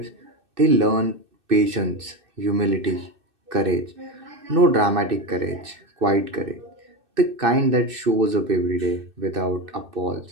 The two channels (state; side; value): late; left; 2.6 ms